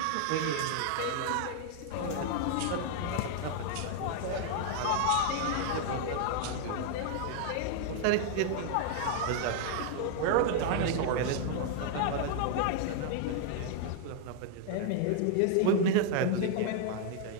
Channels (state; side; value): different; both; correlation 0.00